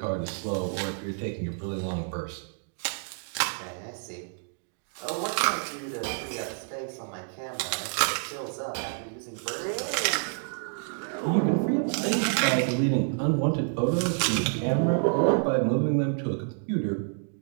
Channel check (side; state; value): left; silent; 59 dB below the other